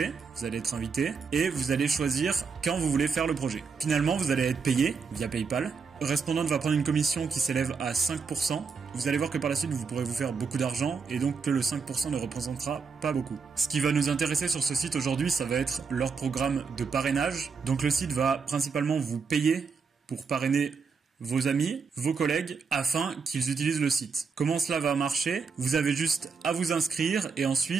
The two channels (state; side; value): quieter; left; 5.3 dB